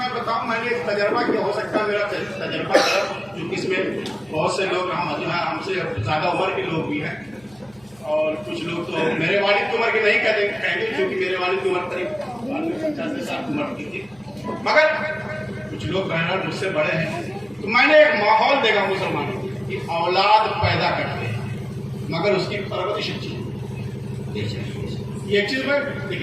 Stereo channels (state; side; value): noise; right; hum, 28 dB below the sound